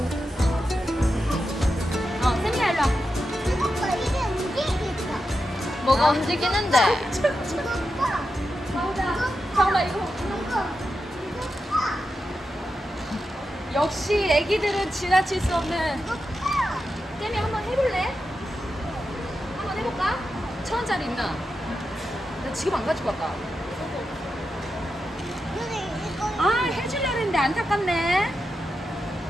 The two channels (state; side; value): normal; both; correlation 0.89